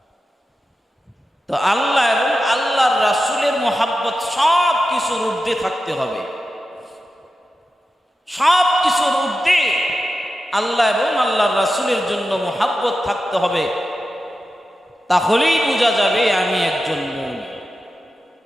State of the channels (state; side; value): normal; both; correlation 0.91